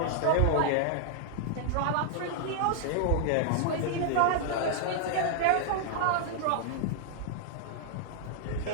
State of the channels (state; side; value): different; both; correlation -0.01